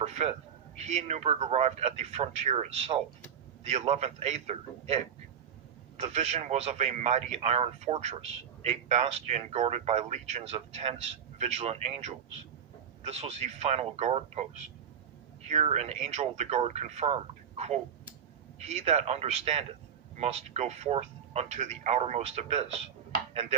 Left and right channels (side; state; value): left; quieter; 7.9 dB